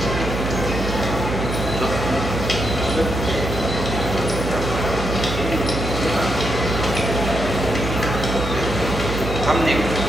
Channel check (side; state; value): right; noise; hum, 5 dB below the sound